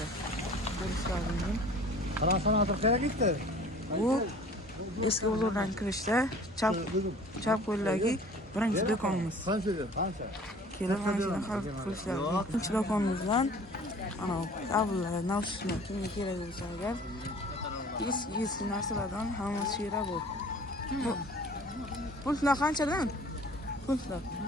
Ko'rishlaringiz. Transformator keraklikda. Bu eski bozordan kirishda chap qo'ldagi birinchi do'konimiz. Qanchaga? Qancha? Kelib mana shuni xarid qilishlar. Ikkinchi do'konimizdan ana kabellar, naushniklar kimga kerak bo'lsa agar eski narsalardan hammasi shu yerda bor. Pultlar qanchadan? Pultlar.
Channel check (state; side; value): normal; both; correlation 0.48